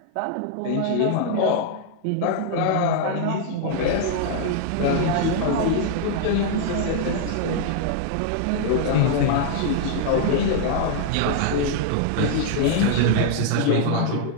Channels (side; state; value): both; different; correlation 0.00